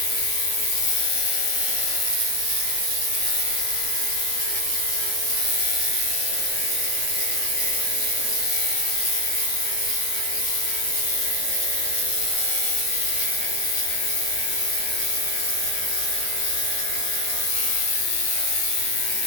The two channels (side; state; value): right; late; 8.4 ms